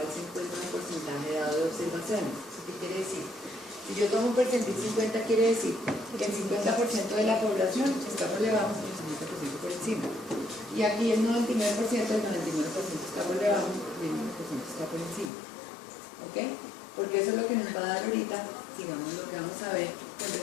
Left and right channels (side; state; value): right; drops out; at 15.3 s